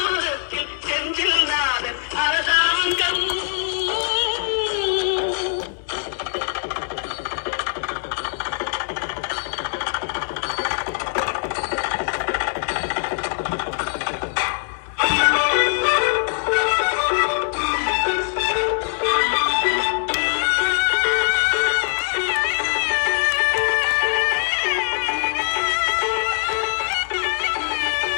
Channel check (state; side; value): silent; right; 64 dB below the other